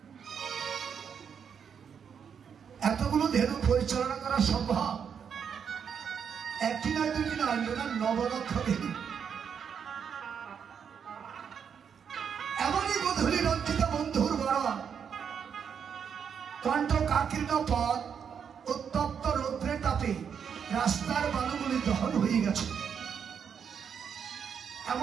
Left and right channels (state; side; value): quieter; left; 7.3 dB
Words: এতগুলো ধেনু পরিচালনা করা সম্ভব? একটি নয়, দুটি নয়, নবলক্ষ ধেনু। এমনই গধূলি রঞ্জিত বন্ধুর বরণ, কণ্ঠ কাকীর্ণ পথ, উত্তপ্ত রৌদ্রের তাপে রাস্তার বালুগুলি দহন হয়ে গেছে।